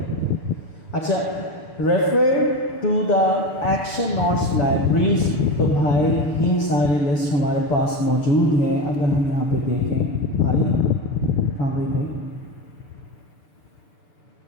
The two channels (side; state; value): right; late; 6.7 ms